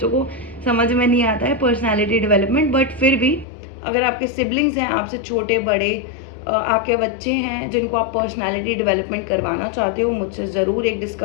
को समझ में नहीं आता है पर्सनालिटी डेवलपमेंट। बट फिर भी अगर आपके सिबलिंग्स हैं, आपसे छोटे बड़े, आपके बच्चे हैं जिनको आप पर्सनालिटी डेवलपमेंट करवाना चाहते हो, मुझसे ज़रूर एक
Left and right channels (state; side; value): drops out; right; at 3.5 s